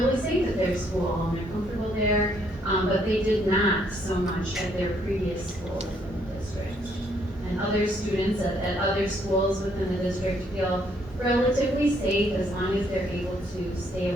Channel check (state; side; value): normal; both; correlation 0.69